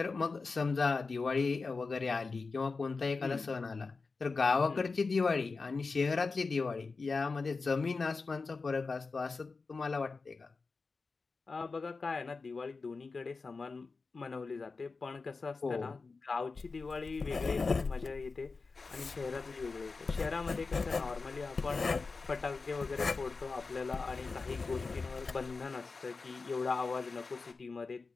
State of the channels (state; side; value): quieter; right; 4.2 dB